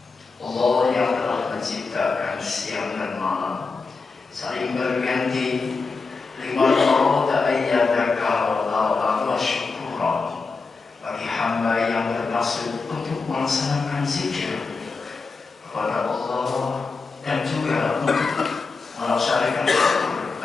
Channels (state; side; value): quieter; right; 4.3 dB